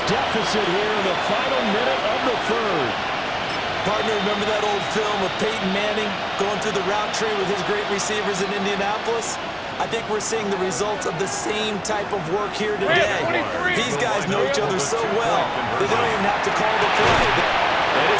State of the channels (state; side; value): identical; both; correlation 1.00